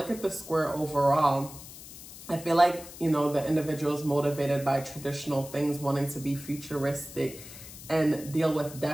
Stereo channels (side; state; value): left; noise; hiss, 15 dB below the sound